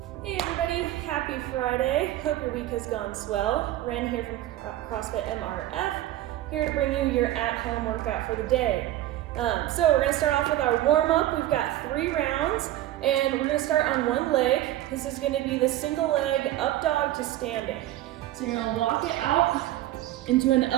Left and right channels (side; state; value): left; quieter; 14.4 dB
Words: everybody, happy Friday. Hope your week has gone swell. Ren here from CrossFit MRF, here to bring you your at-home workout for the day. So we're going to start off with our warm-up. We've got 3 rounds, and we're going to start on one leg. This is going to be the single leg up dog to standing. So you're going to walk it out into an